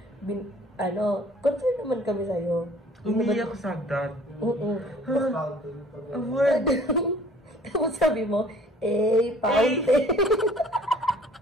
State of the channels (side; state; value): both; normal; correlation 0.53